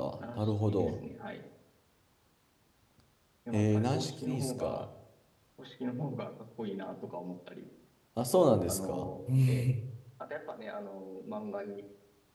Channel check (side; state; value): both; identical; correlation 1.00